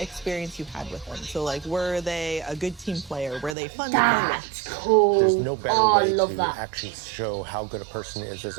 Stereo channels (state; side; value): drops out; left; at 3.6 s